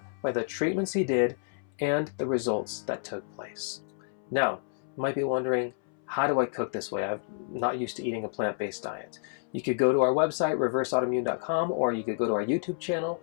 by the treatments he did and the results that took place. Now, you might be wondering, how do I cook this way? I'm not used to eating a plant-based diet. You could go to our website, reverseautoimmune.com, or you could go to our YouTube channel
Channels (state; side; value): silent; right; 58 dB below the other